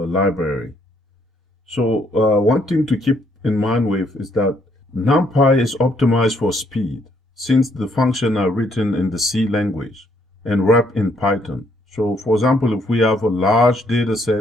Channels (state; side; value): normal; both; correlation 0.70